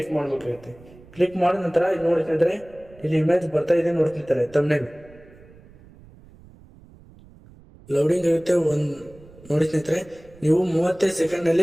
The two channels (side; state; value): right; noise; rumble, 23 dB below the sound